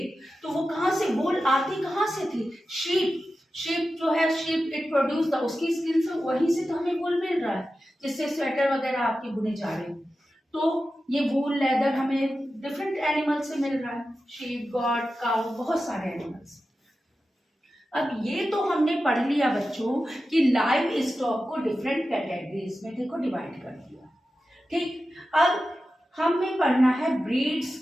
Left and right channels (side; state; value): both; normal; correlation 0.93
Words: तो वो कहाँ से वूल आती, कहाँ से थी, शीप, शीप जो है, शीप इट प्रोड्यूस द, उसकी स्किन से, वहीं से तो हमें वूल मिल रहा है जिससे स्वेटर वगैरह आपकी बुने जा रहे हैं। तो ये वूल, लेदर हमें डिफरेंट एनिमल से मिल रहा है, शीप, गॉट, काऊ, बहुत सारे एनिमल्स। अब ये तो हमने पढ़ लिया बच्चों कि लाइव स्टॉक को डिफरेंट कैटेगरीज में देखो डिवाइड कर दिया, ठीक। अब हमें पढ़ना है ब्रीड्स